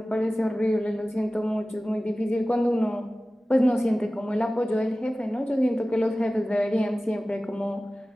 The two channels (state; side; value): normal; both; correlation 0.96